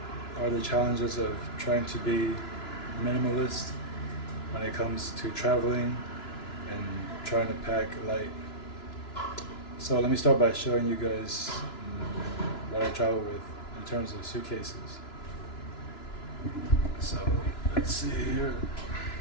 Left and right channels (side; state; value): right; late; 2.9 ms